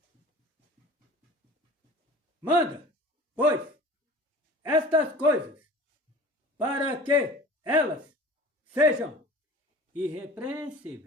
Manda, pois, estas coisas, para que elas sejam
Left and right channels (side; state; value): both; normal; correlation 0.41